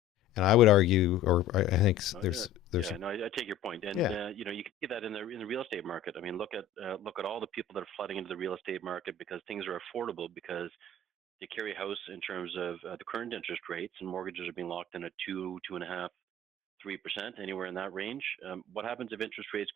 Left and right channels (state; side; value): quieter; right; 5.4 dB